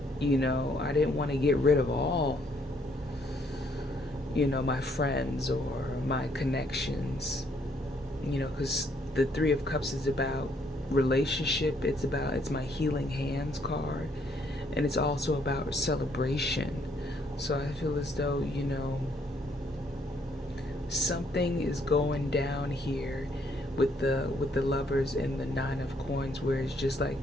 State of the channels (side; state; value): both; normal; correlation 0.69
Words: I didn't want to get rid of all, my friends or my connections, because the Three of Cups is about relationship. It's my healing hands card, and it's also about celebration. So I feel as though, something is going down here with the Lovers and the Nine of Coins, where it's just like,